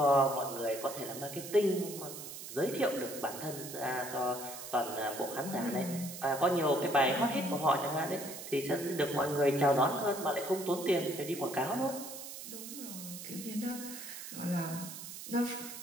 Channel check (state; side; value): noise; right; hiss, 10 dB below the sound